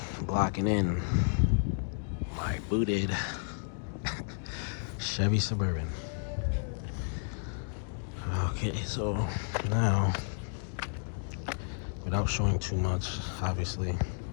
blocking in my booted Chevy Suburban. Okay, so now, without showing too much, obviously,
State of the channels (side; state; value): right; silent; digital silence